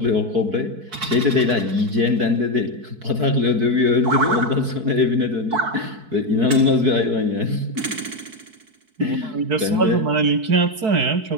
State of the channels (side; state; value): left; late; 4.6 ms